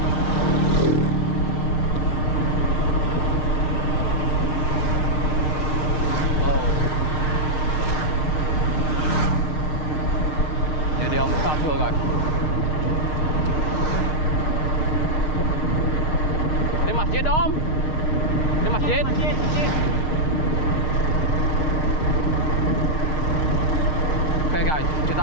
Oh, ini dia Om Samsu guys. Di masjid Om, di masjid. Masjid. Oke guys, kita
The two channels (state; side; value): late; right; 6.4 ms